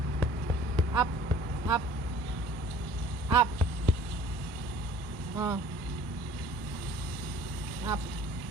Up. Up. Up. Oh. Up.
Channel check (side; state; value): both; normal; correlation 0.50